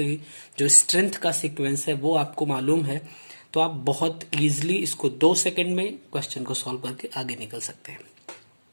जो स्ट्रेंथ का सीक्वेंस है वो आपको मालूम है, तो आप बहुत इजीली इसको 2 सेकंड में क्वेश्चन को सॉल्व करके आगे निकल सकते हैं।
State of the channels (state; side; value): inverted; both; correlation -1.00